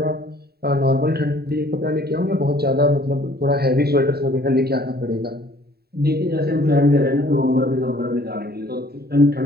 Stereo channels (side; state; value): left; late; 0.46 ms